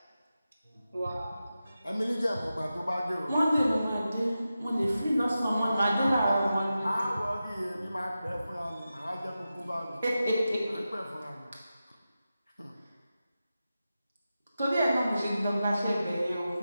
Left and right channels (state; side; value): inverted; both; correlation -0.92